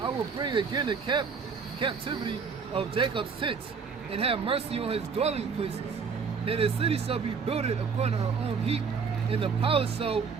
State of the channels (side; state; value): left; quieter; 5.7 dB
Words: will bring again the captivity of Jacob's tents, and have mercy on his dwelling places. And the city shall be builded upon her own heap, and the palace shall